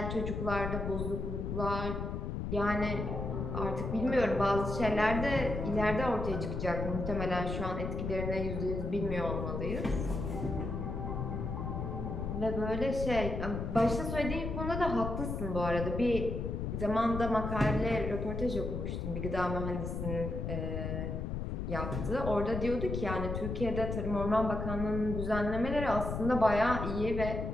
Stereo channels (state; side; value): noise; left; rumble, 3 dB below the sound